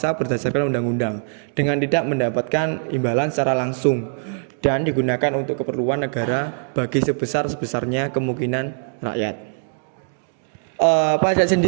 berdasarkan undang-undang dengan tidak mendapatkan imbalan secara langsung dan digunakan untuk keperluan negara bagi sebesar-besarnya kemungkinan rakyat. Pajak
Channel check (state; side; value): silent; left; digital silence